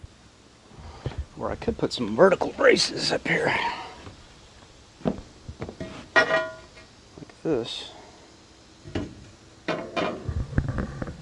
Or I could put some vertical braces up here. Like this.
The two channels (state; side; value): identical; both; correlation 1.00